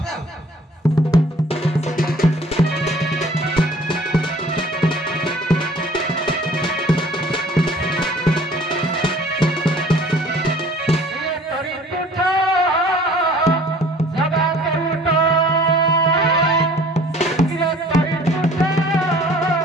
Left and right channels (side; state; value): both; normal; correlation 0.52